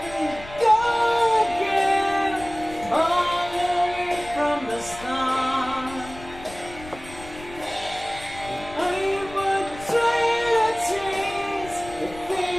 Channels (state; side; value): noise; left; rumble, 17 dB below the sound